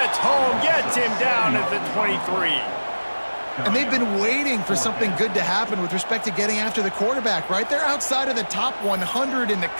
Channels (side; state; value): both; inverted; correlation -1.00